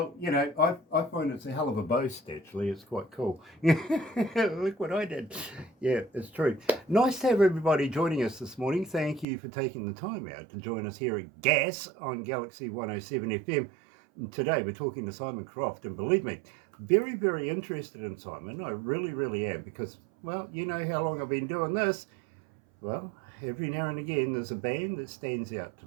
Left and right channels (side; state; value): left; drops out; at 9.2 s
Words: I find it's a hell of a boast, actually. It's quite cool. Look what I did. Yeah, it's true. Nice to have everybody joining us this morning. Thank you for taking the time out to join us here at GAS on Galaxy 107 FM. And today we're talking to Simon Croft, and believe me, very, very interested in Simon. I really, really am, because, well, you know how long I've been doing this. Well, every now and again there's a band that stands out to